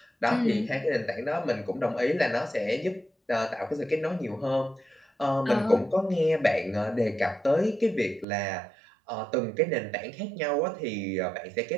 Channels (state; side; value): drops out; left; at 8.2 s